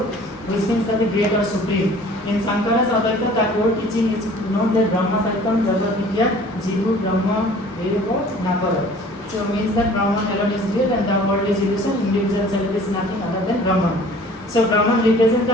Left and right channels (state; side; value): normal; both; correlation 0.49